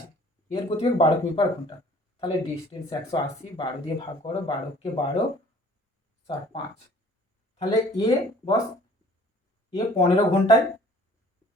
এর গতিবেগ 12 কিমি/ঘন্টা। তাহলে ডিস্টেন্স 180, 12 দিয়ে ভাগ করো, 12কে 12, 4, 5। তাহলে এ বস, এ 15 ঘন্টায়,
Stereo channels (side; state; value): both; normal; correlation 0.53